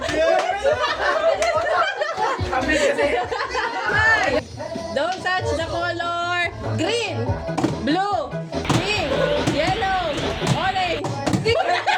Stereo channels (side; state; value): both; identical; correlation 1.00